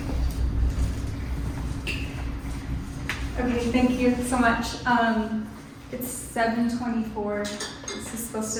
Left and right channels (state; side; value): identical; both; correlation 1.00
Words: Okay, thank you so much. It's 7:24. This is supposed